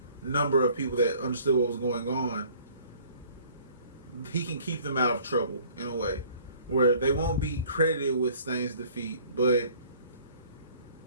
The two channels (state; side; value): inverted; both; correlation -0.54